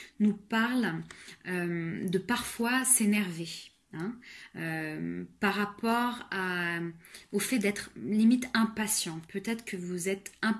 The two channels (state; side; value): identical; both; correlation 1.00